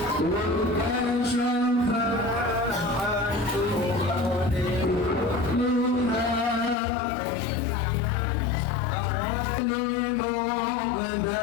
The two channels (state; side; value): drops out; right; at 6.8 s